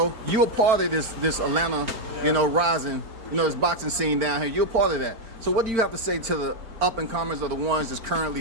you're a part of this Atlanta, you know, rising, you know, this boxing scene down here. You're a part of that. So what do you have to say to the up-and-comers or the ones that's currently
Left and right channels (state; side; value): late; left; 4.4 ms